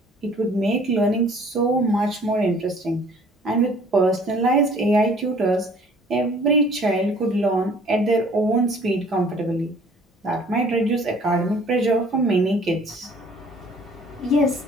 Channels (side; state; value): both; normal; correlation 0.54